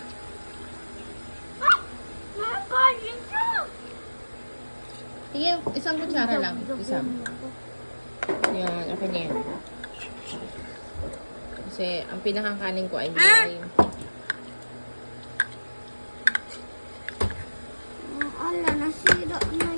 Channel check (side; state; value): both; inverted; correlation -1.00